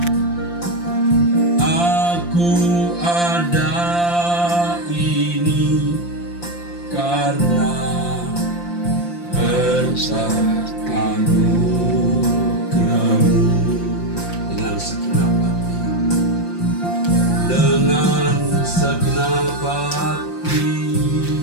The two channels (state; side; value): late; right; 5.8 ms